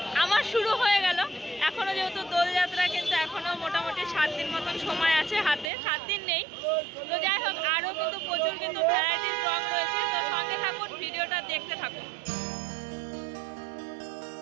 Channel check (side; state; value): left; drops out; at 5.7 s